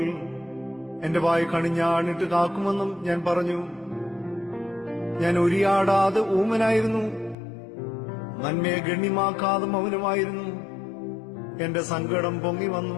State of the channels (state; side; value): drops out; right; at 7.4 s